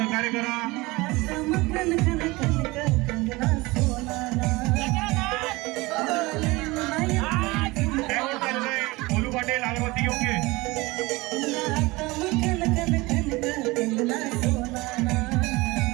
करा. बोलू पाटील अगरबत्ती घेऊन घे.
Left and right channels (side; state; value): left; quieter; 22.2 dB